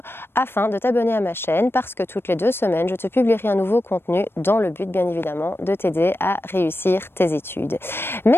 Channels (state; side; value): late; right; 0.11 ms